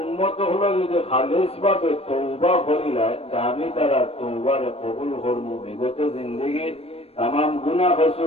হলো যদি খালিস ভাবে তৌবা করিলায়, আমি তারা তৌবারে কবুল করবো, বিগত জিন্দগির তাম গুণা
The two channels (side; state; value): right; late; 0.29 ms